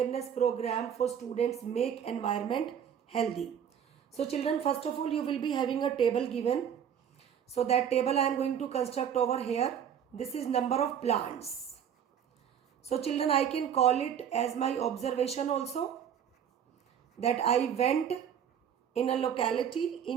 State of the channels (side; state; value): left; quieter; 8.6 dB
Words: program for students make environment healthy. So children, first of all, you will be having a table given. So that table I am going to construct over here. This is number of plants. So children, I can call it as my observation also, that I went in a locality